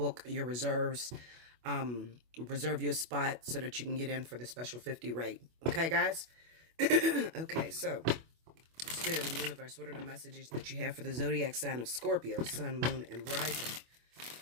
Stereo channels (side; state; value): left; late; 25 ms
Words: your reserves. Reserve your spot so that you can get in for the special 50 rate. Okay, guys? Okay, so Spirit and Universe, what are the messages that you have for the zodiac sign of Scorpio, Sun, Moon, and Rising